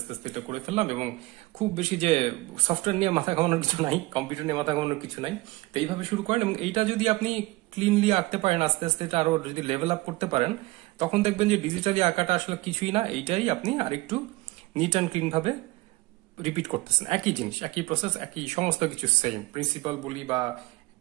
আস্তে এটা করে ফেললাম, এবং খুব বেশি যে সফটওয়্যার নিয়ে মাথা ঘামানোর কিছু নাই, কম্পিউটার নিয়ে মাথা ঘামানোর কিছু নাই। তো এইভাবে শুরু করেন, এবং এইটা যদি আপনি ক্লিনলি আঁকতে পারেন আস্তে আস্তে, এটা আরো যদি লেভেল আপ করতে পারেন, তখন দেখবেন যে ডিজিটালি আঁকাটা আসলে কিছুই না, এইটাই আপনি আরেকটু নিট অ্যান্ড ক্লিন ভাবে রিপিট করতেছেন, একই জিনিস, একই প্রসেস, একই সমস্ত কিছু সেম প্রিন্সিপাল বলি বা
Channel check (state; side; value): quieter; left; 20.9 dB